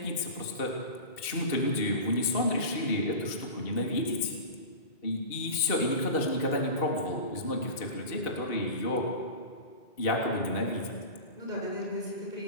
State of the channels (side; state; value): right; late; 2.6 ms